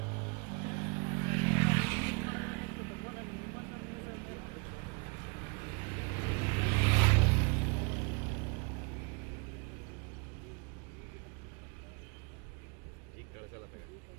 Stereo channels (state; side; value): quieter; left; 32.7 dB